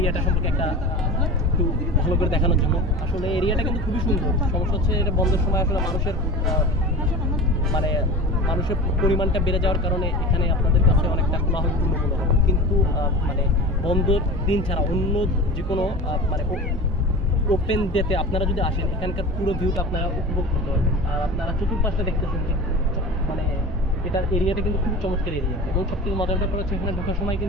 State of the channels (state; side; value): normal; both; correlation 0.33